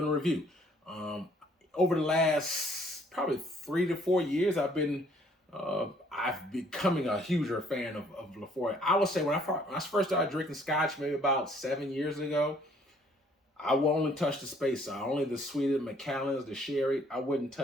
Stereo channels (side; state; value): both; normal; correlation 0.62